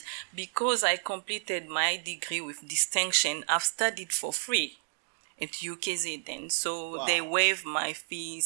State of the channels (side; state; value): left; silent; digital silence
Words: because I completed my degree with distinction, I've studied for free at UKZN. So Wow. they waived my